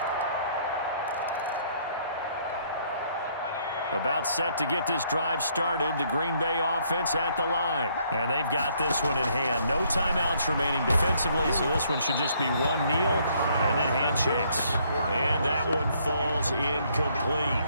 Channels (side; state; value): both; inverted; correlation -0.67